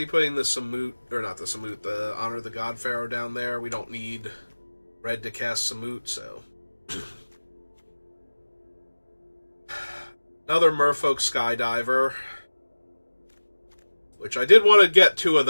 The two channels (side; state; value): both; inverted; correlation -1.00